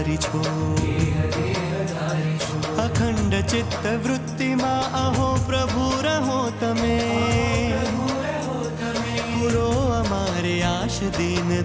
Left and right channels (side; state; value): both; identical; correlation 1.00